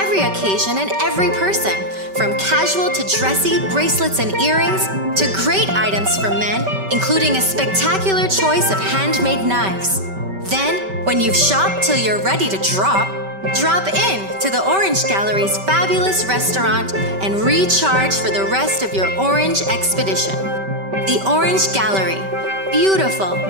occasion and every person, from casual to dressy bracelets and earrings to great items for men, including a spectacular choice of handmade knives. Then, when you've shopped till you're ready to drop in to the Orange Gallery's fabulous restaurant and recharge for the rest of your orange expedition. The Orange Gallery. Beautiful,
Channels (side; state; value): left; late; 5.2 ms